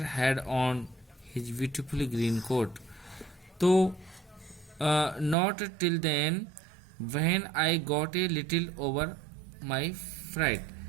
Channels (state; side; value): drops out; left; at 5.4 s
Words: had on his beautiful green coat. तो not till then when I got a little over my fright,